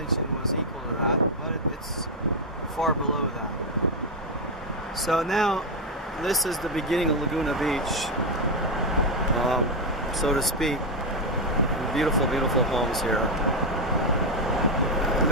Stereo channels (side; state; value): both; normal; correlation 0.03